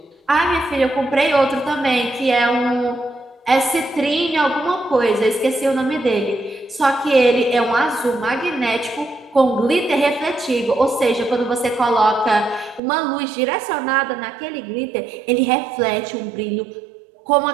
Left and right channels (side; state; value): left; drops out; at 12.8 s